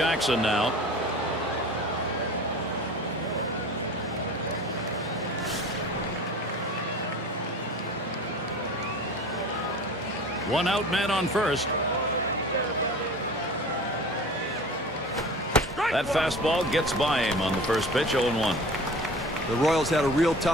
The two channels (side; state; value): both; normal; correlation 0.39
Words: now. One out, man on first. That fastball gets by him on the first pitch, 0-1. The Royals had a real